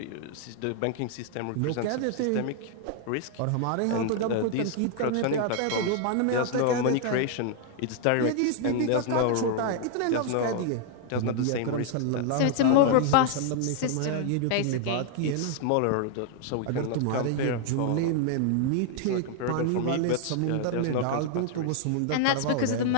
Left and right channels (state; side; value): different; both; correlation 0.00